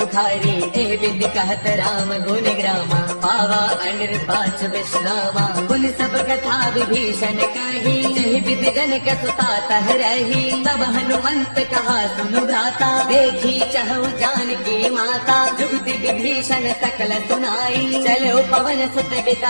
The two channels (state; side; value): inverted; both; correlation -1.00